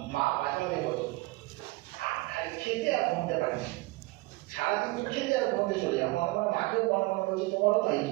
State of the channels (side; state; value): left; quieter; 22.3 dB